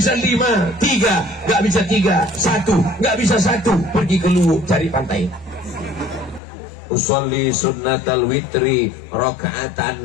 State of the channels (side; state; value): right; drops out; at 6.4 s